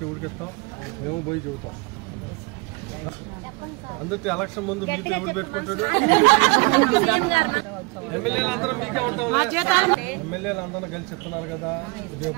ఎవరికి ఇస్తాం, మేము పోయి చూస్తాం. అందరితో ఎలక్షన్ ముందు మీకు ఎవరు పెట్టుకుంటాడు? ఎమ్మెల్యేలు అందరూ మీకే ఉంటాం. ఎమ్మెల్యేలు అందరూ కలిసి చెప్తున్నారు కదా, రేపు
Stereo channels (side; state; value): left; quieter; 27.4 dB